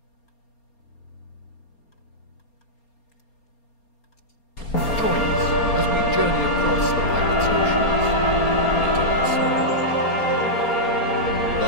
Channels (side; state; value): right; late; 4.3 ms